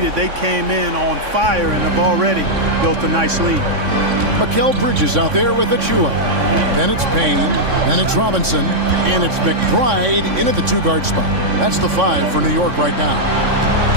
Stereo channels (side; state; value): left; late; 3.6 ms